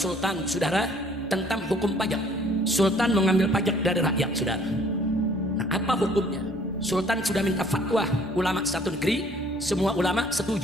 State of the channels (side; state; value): both; normal; correlation 0.58